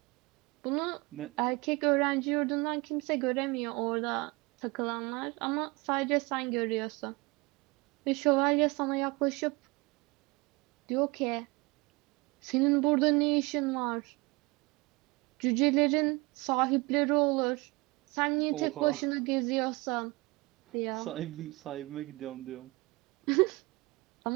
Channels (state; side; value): quieter; left; 24.9 dB